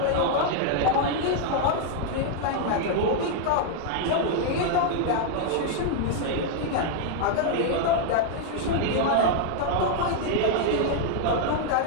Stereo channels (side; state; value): both; different; correlation 0.00